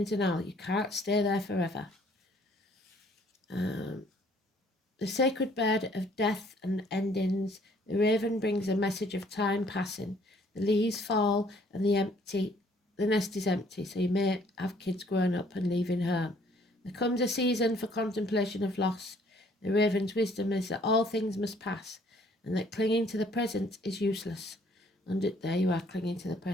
denial. You can't stay there forever. The sacred bird of death and endings, the raven brings a message of time passing. The leaves fall and the nest is empty, so you may have kids growing up and leaving home. There comes a season for contemplation of loss. The raven's wisdom is that all things must pass, and that clinging to the present is useless. And there you are, clinging to the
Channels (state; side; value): normal; both; correlation 0.61